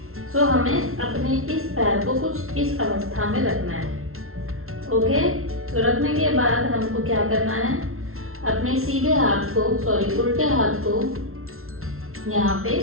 सो हमें अपने इस पैर को कुछ इस अवस्था में रखना है, ओके। तो रखने के बाद हमको क्या करना है, अपने सीधे हाथ को उल्टे हाथ को यहाँ पे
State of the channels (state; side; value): late; left; 0.62 ms